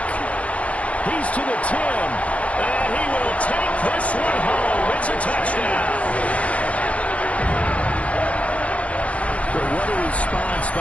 He's to the 10. And he will take this one home. It's a touchdown. What a response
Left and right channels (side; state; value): right; late; 0.068 ms